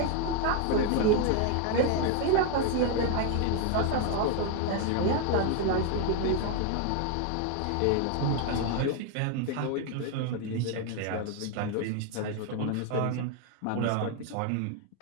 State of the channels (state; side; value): different; both; correlation 0.01